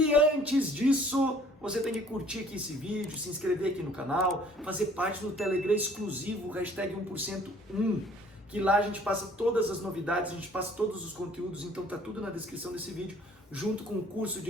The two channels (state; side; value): normal; both; correlation 0.55